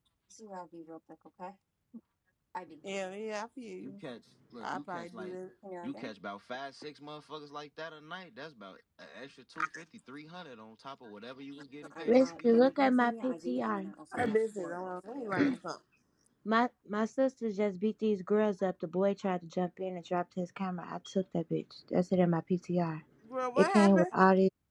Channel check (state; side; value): identical; both; correlation 1.00